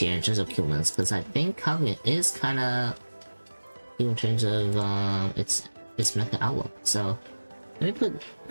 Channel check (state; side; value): inverted; both; correlation -1.00